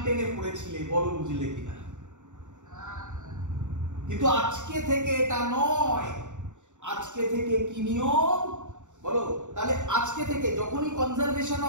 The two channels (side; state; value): left; late; 0.85 ms